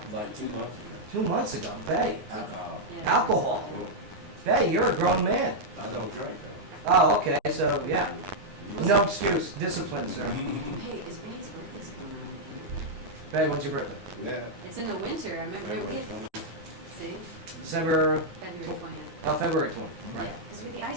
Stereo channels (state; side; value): late; left; 9.7 ms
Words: Like 2 months. 2 months ago. Bay. Alcohol. yeah. Alcohol. Bay, you're a grown man. I don't drink though. Oh, okay. So, yeah. No excuse. Discipline, sir. Hey, is May's birthday coming up? Bay, when's your birthday? Yeah. It's in the winter. I remember we February had, 20. see, December, February 20th. oh, February 20th. Right. Yeah, because we had the